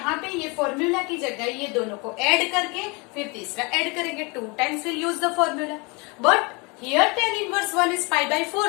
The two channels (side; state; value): right; quieter; 28.9 dB